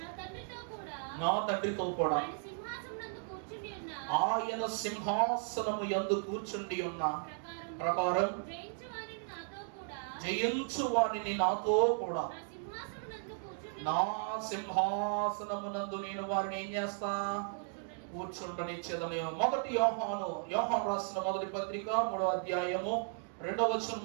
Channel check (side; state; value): left; silent; 54 dB below the other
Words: నా తండ్రితో కూడా ఆయన సింహాసనము యందు కూర్చుండి ఉన్న ప్రకారం జయించు వారిని నాతో కూడా నా సింహాసనమునందు నేను వారిని ఏం చేస్తా? కూర్చుండనిచ్చేదని. మొదటి యోహాను రాసిన మొదటి పత్రిక 3వ అధ్యాయము 2వ వచనం